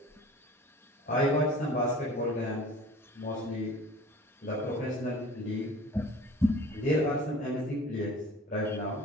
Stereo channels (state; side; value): normal; both; correlation 0.44